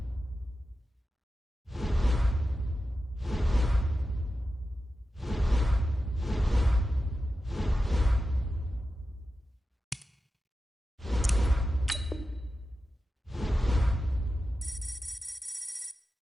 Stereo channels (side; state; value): both; normal; correlation 0.92